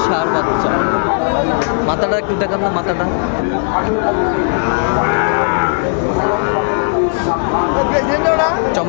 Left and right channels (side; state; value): right; silent; digital silence